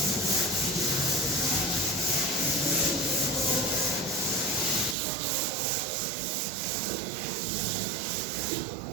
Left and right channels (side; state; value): left; drops out; at 5.0 s